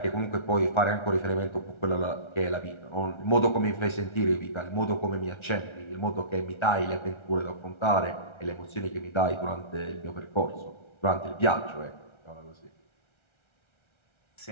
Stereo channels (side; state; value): right; late; 1.3 ms